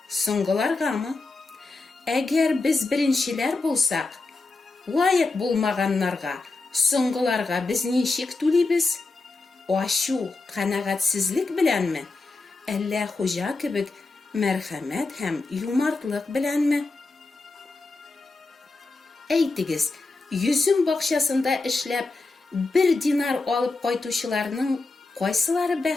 Соңгыларгамы? Әгәр без беренчеләр булсак, лаек булмаганнарга, соңгыларга без ничек түлибез? Ачу, канәгатьсезлек беләнме? Әллә Хуҗа кебек мәрхәмәт һәм юмартлык беләнме? Әйтегез, йөзем бакчасында эшләп 1 динар алып кайтучыларның кайсылары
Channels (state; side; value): quieter; right; 3.5 dB